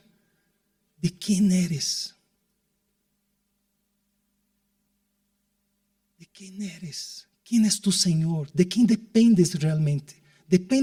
de quién eres. ¿De quién eres? ¿Quién es tu Señor? ¿De quién dependes realmente?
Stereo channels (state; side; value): identical; both; correlation 1.00